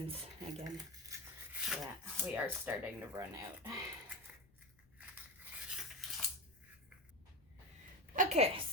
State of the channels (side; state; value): left; noise; rumble, 29 dB below the sound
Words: again. Yeah, we are starting to run out. Okay,